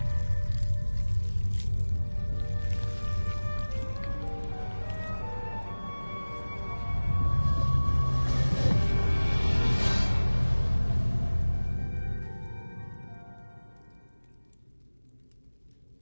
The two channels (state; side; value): inverted; both; correlation -1.00